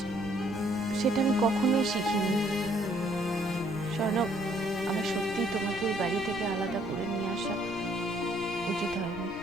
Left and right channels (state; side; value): noise; left; rumble, 17 dB below the sound